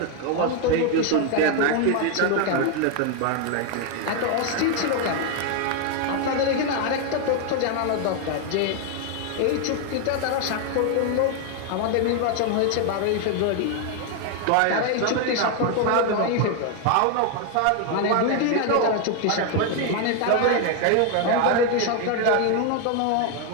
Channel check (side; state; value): both; different; correlation 0.01